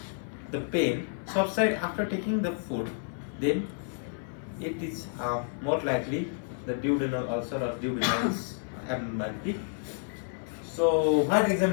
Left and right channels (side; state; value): right; silent; 58 dB below the other